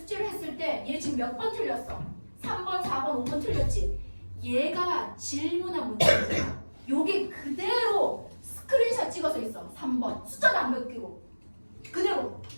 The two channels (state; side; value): inverted; both; correlation -1.00